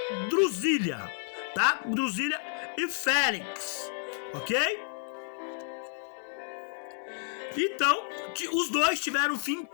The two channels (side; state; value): right; silent; 57 dB below the other